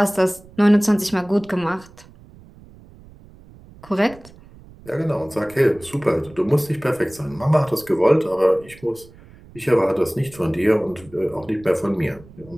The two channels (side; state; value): right; noise; rumble, 23 dB below the sound